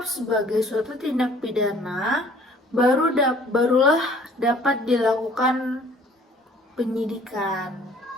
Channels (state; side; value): normal; both; correlation 0.55